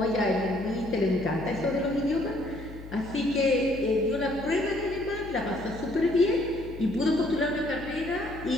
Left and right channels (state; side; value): noise; left; hum, 15 dB below the sound